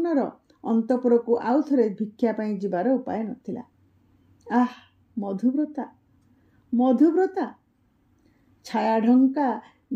अंतपुर को आउ थरे भिक्षा पई जिबार उपाय नथिला। मधुव्रता मधुव्रता छाया ढंका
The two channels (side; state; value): both; identical; correlation 1.00